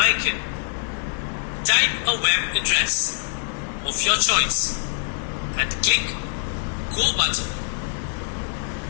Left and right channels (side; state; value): right; silent; digital silence